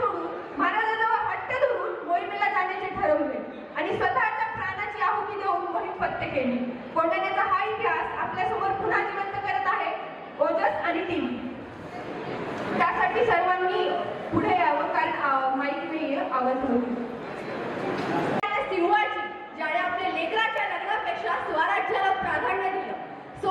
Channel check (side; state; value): both; identical; correlation 1.00